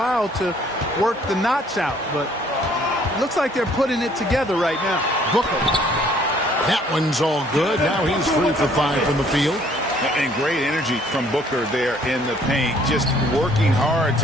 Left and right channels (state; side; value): normal; both; correlation 0.60